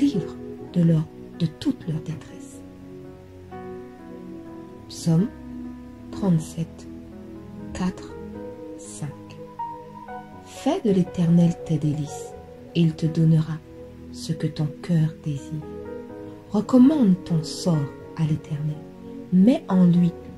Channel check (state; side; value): identical; both; correlation 1.00